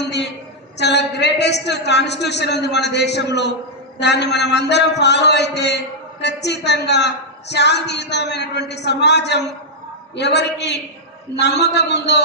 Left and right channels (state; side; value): normal; both; correlation -0.06